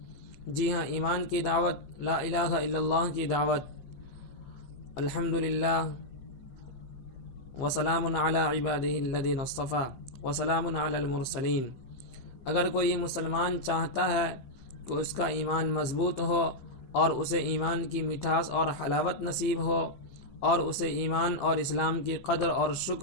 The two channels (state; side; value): late; right; 15 ms